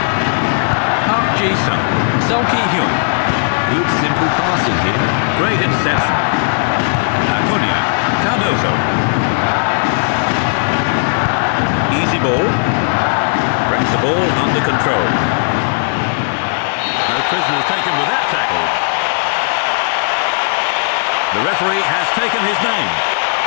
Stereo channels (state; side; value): silent; right; digital silence